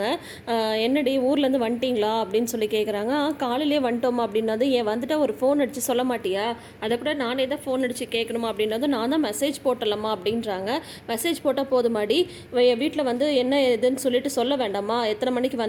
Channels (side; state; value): both; identical; correlation 1.00